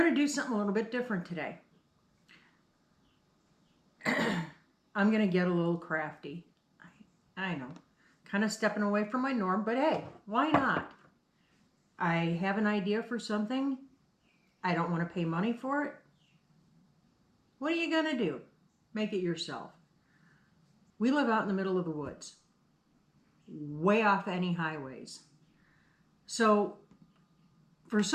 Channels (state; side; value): identical; both; correlation 1.00